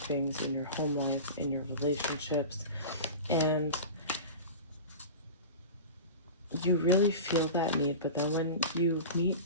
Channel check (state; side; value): inverted; both; correlation -0.31